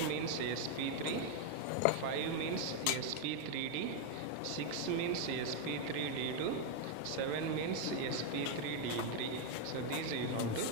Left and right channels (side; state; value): both; different; correlation 0.01